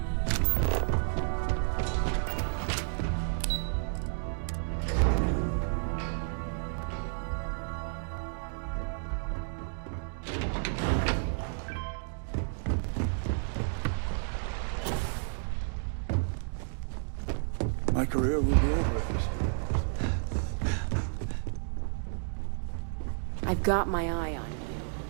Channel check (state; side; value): silent; left; digital silence